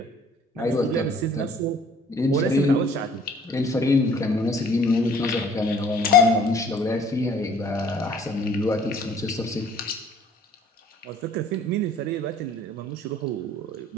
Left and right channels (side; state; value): both; normal; correlation 0.55